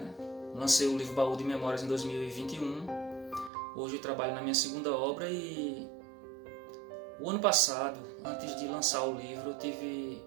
Lancei o livro Baú de Memórias em 2021. Hoje eu trabalho na minha segunda obra e o ano passado, antes de lançar o livro, eu tive,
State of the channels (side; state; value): left; drops out; at 3.5 s